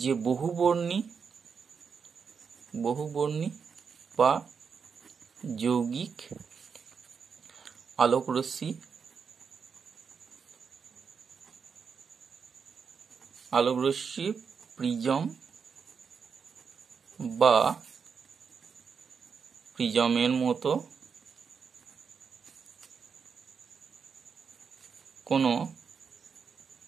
বহুবর্ণী বা যৌগিক আলোক রশ্মি প্রিজম বা প্রিজমের মতো কোনো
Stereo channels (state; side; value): quieter; left; 6.1 dB